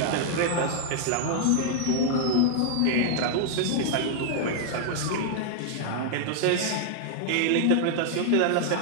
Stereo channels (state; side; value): different; both; correlation -0.01